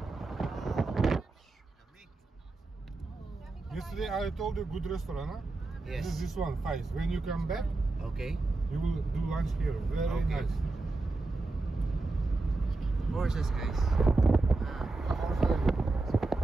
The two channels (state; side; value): quieter; left; 3.3 dB